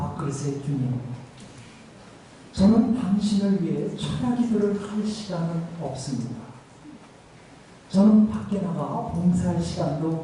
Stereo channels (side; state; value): both; identical; correlation 1.00